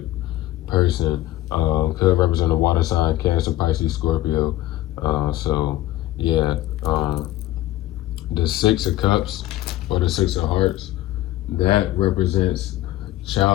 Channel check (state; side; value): quieter; right; 15.3 dB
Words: person. Could represent a water sign, Cancer, Pisces, Scorpio. So yeah, the 6 of Cups or the 6 of Hearts, that represents